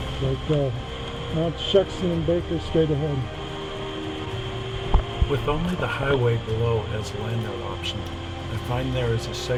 Like Mount Shuxton and Baker straight ahead. With only the highway below as a landout option, I find there is a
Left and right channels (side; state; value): both; identical; correlation 1.00